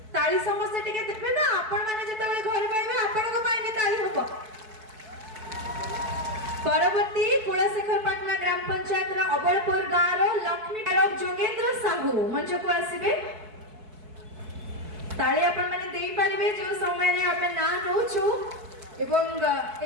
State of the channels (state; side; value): late; left; 4.6 ms